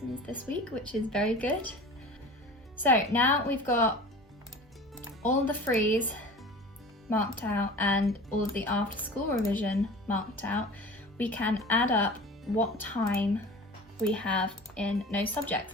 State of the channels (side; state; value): both; normal; correlation 0.38